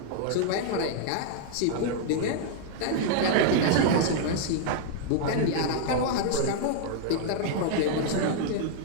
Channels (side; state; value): both; different; correlation 0.00